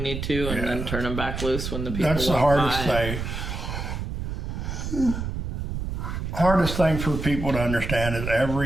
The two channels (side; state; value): right; noise; rumble, 4 dB below the sound